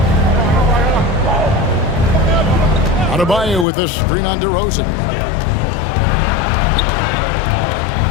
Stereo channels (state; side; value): drops out; right; at 3.7 s